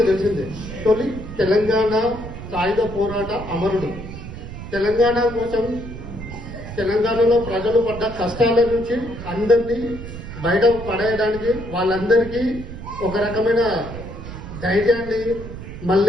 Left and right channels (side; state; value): right; noise; rumble, 11 dB below the sound